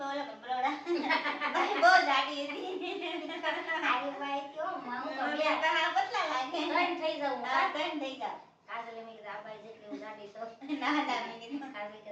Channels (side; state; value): both; identical; correlation 1.00